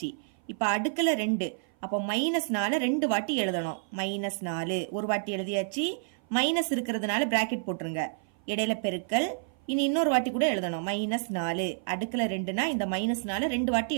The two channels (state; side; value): silent; left; 56 dB below the other